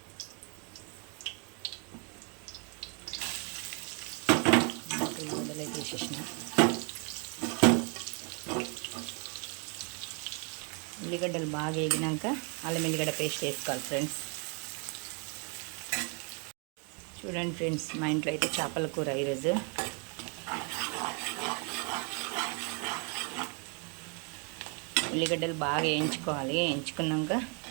ఉల్లిగడ్డలు వేసేసిన ఉల్లిగడ్డలు బాగా వేగినాక అల్లం ఎల్లిగడ్డ పేస్ట్ వేసుకోవాలి ఫ్రెండ్స్. చూడండి ఫ్రెండ్స్, మా ఇంట్లో అయితే చేపల కూర ఈరోజు. ఉల్లిగడ్డలు బాగా వేయించుకోవాలి. వేయించుకున్నాక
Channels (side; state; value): left; quieter; 36.7 dB